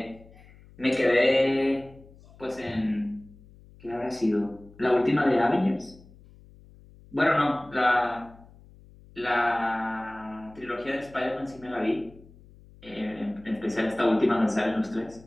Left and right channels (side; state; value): left; noise; hum, 24 dB below the sound